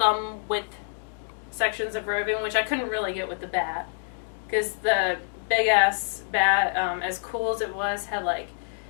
width sections of roving, which I couldn't really get with the bat. Because the big ass bat, as cool as it was, had like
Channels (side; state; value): right; silent; digital silence